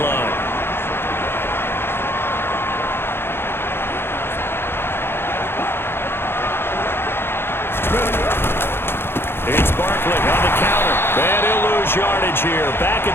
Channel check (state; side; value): late; right; 0.11 ms